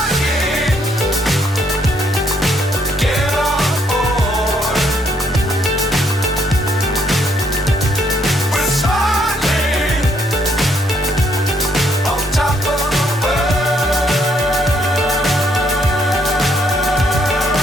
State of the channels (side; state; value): both; normal; correlation 0.70